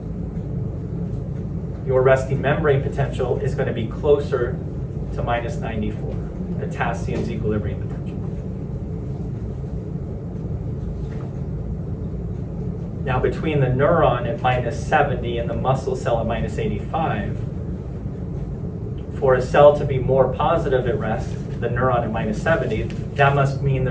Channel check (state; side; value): identical; both; correlation 1.00